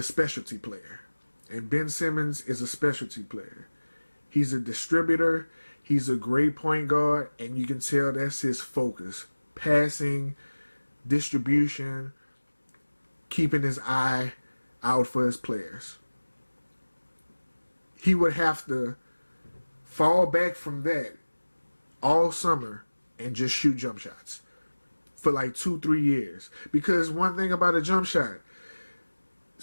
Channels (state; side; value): inverted; both; correlation -1.00